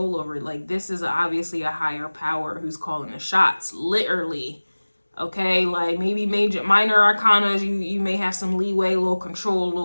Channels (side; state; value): both; inverted; correlation -1.00